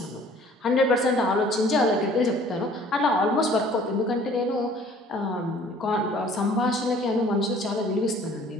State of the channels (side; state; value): both; normal; correlation 0.53